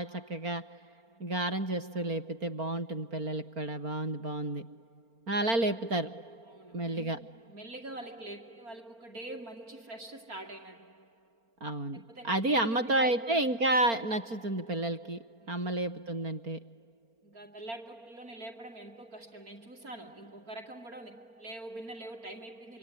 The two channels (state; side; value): late; left; 4.4 ms